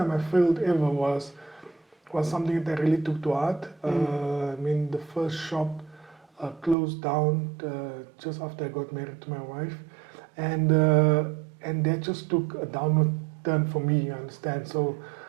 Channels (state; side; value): drops out; left; at 6.8 s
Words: I failed ever was something that I really took to heart. I mean, the first shop closed down just after I got married to my wife, and that just took a downward turn for me. You understand? So